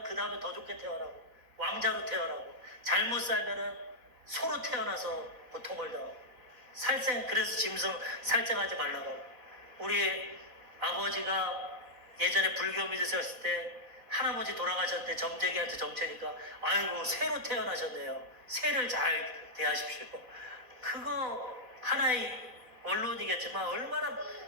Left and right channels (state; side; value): late; left; 4.3 ms